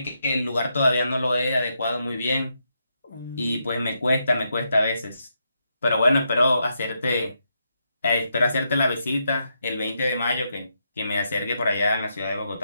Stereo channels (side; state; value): both; inverted; correlation -0.81